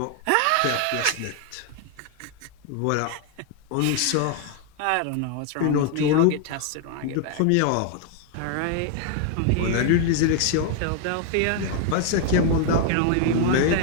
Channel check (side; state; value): both; different; correlation 0.00